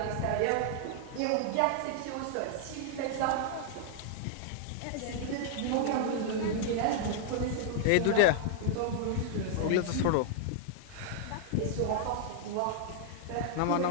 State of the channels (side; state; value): both; different; correlation 0.00